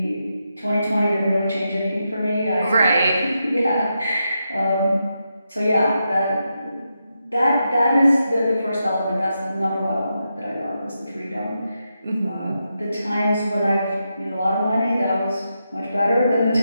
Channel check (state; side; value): inverted; both; correlation -0.86